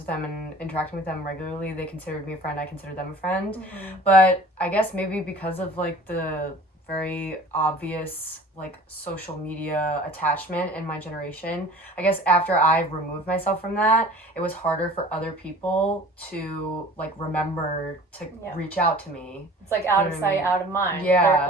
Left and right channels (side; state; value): both; normal; correlation 0.45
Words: them and interacting with them regularly, they considered me a friend, I considered them a friend. But I guess maybe because of like the very obvious like social media attachment in my generation. I guess after I removed myself from that, it was harder for other people to like remember to reach out to me. It's like out of sight, out of mind. Yeah. They're,